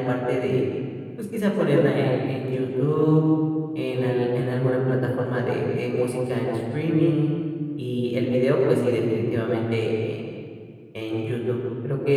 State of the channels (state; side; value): identical; both; correlation 1.00